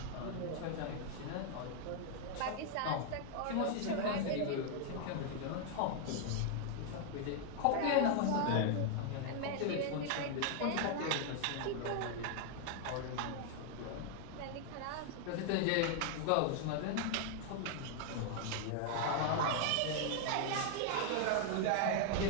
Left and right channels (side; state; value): both; different; correlation 0.00